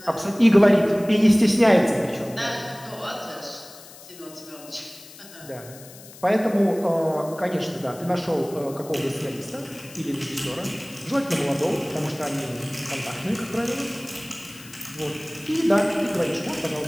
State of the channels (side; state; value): left; noise; hiss, 19 dB below the sound